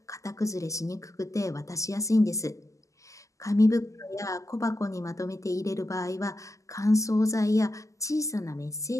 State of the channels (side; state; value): right; late; 0.16 ms